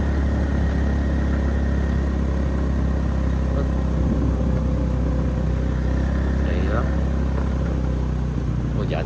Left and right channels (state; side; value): identical; both; correlation 1.00